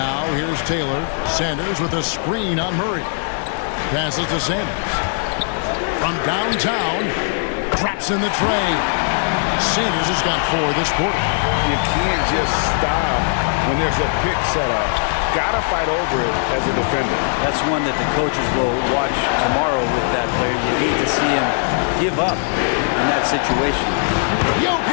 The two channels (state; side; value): silent; right; digital silence